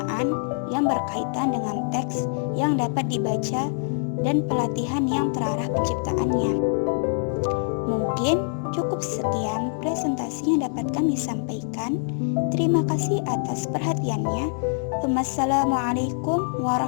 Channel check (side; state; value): right; silent; digital silence